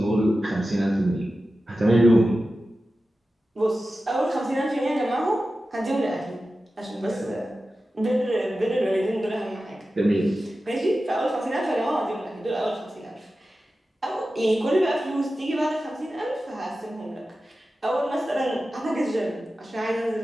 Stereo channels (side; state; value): both; normal; correlation 0.94